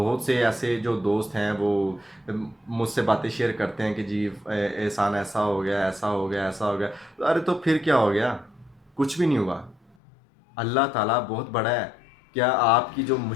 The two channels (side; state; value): right; drops out; at 10.0 s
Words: سے ایسے جو دوست ہیں وہ مجھ سے باتیں شیئر کرتے ہیں کہ جی احسان ایسا ہو گیا، ایسا ہو گیا، ایسا ہو گیا۔ ارے تو پھر کیا ہو گیا؟ کچھ بھی نہیں ہوا۔ اللہ تعالیٰ بہت بڑا ہے۔ کیا آپ کی جو